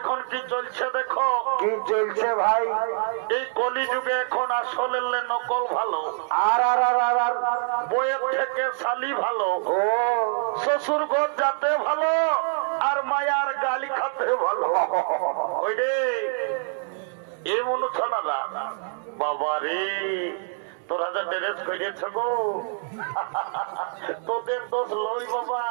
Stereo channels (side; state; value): left; silent; 59 dB below the other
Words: কি চলছে দেখো। কি চলছে ভাই? এই কলিযুগে এখন আসলে নকল ভালো, আর আর আর আর আর বইয়ের থেকে শালি ভালো, ও শ্বশুর ঘর যাতে ভালো, আর মায়ার গালি খাতে ভালো। ওই রে এ মনু ছাড়া বাবা রে, তোরা যা ড্রেস করিয়েছ গো, তোদের দোষ লই বাবা।